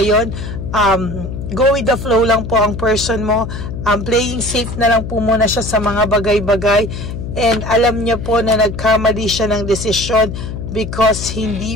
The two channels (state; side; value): noise; left; hum, 7 dB below the sound